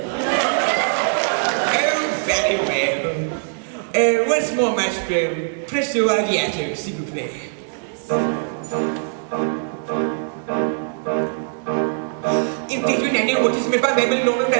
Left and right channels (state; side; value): silent; left; digital silence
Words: Once more, maestro. Presto agiato, s'il vous plaît. In fact, when I know what is meant by memory, known and